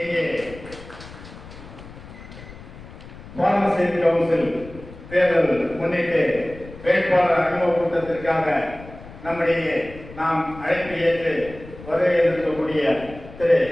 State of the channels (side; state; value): left; noise; rumble, 16 dB below the sound